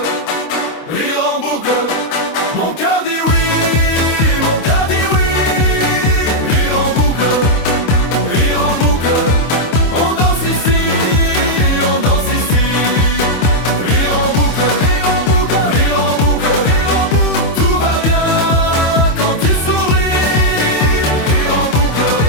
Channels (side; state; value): right; late; 26 ms